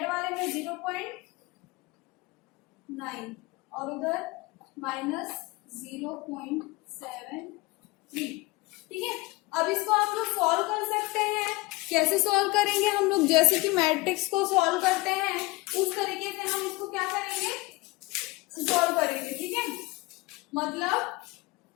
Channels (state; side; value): quieter; right; 22.4 dB